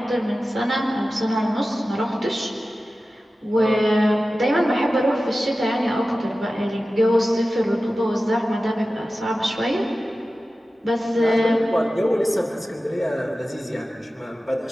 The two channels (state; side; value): normal; both; correlation 0.95